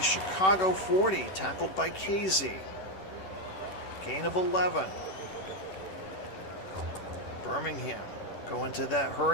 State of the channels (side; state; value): right; late; 11 ms